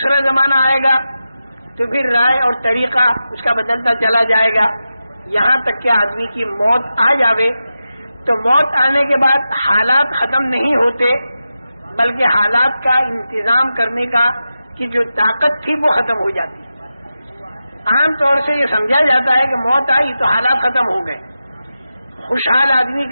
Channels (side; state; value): both; inverted; correlation -0.91